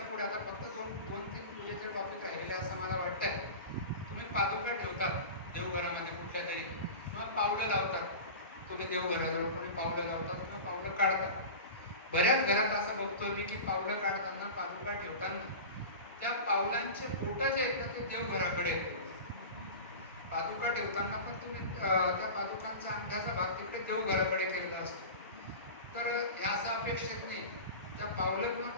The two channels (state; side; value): inverted; both; correlation -0.31